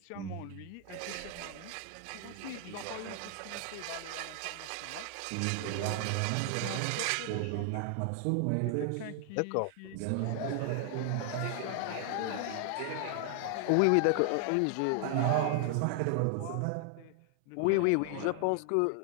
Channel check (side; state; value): both; different; correlation 0.00